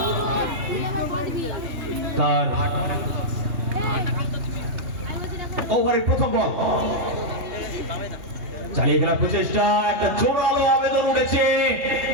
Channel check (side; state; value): left; late; 3.2 ms